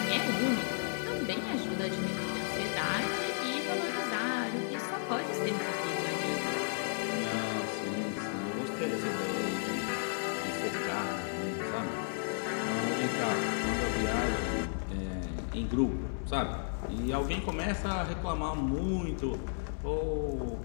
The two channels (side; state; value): right; silent; digital silence